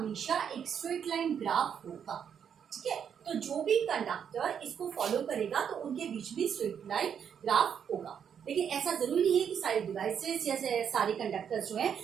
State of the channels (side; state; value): left; quieter; 7.9 dB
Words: एक स्ट्रेट लाइन ग्राफ होगा। ठीक है, तो जो भी कंडक्टर इसको फॉलो करेगा तो उनके बीच में स्ट्रेट लाइन ग्राफ होगा। लेकिन ऐसा जरूरी नहीं है कि सारे डिवाइसेस या सारे कंडक्टर्स जो हैं